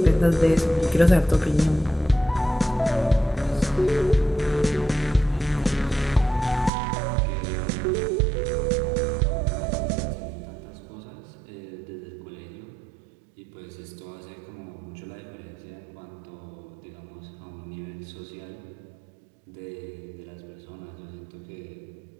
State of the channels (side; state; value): left; drops out; at 6.7 s